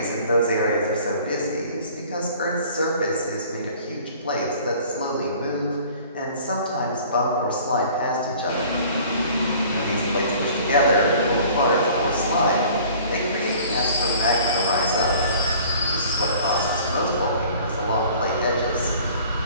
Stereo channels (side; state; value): both; inverted; correlation -0.49